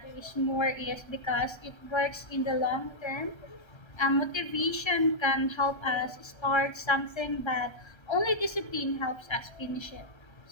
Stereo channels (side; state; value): right; late; 1.3 ms